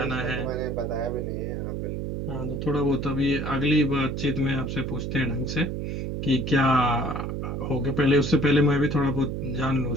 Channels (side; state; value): right; noise; hum, 3 dB below the sound